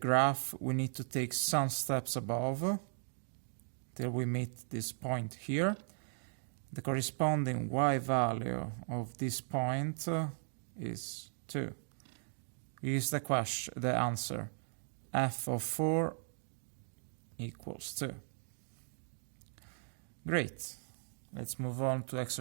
we need to take some steps above till we meet this point here. The corresponding y value of this point is 2. Here's the answer. F of 4 equals 2. Great. Let's move on to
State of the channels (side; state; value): left; silent; digital silence